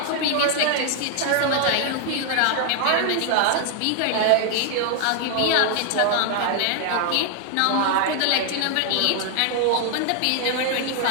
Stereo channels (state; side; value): different; both; correlation 0.00